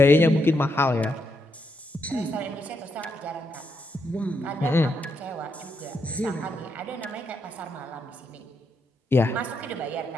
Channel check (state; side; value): normal; both; correlation 0.79